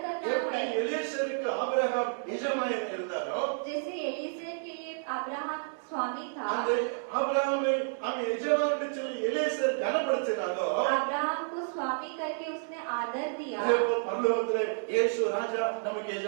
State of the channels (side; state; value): left; silent; digital silence